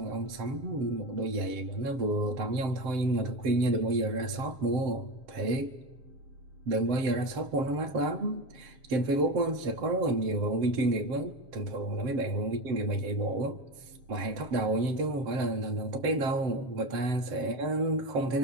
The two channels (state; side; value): late; left; 7.7 ms